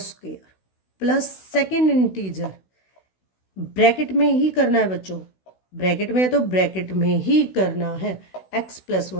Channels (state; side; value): late; right; 16 ms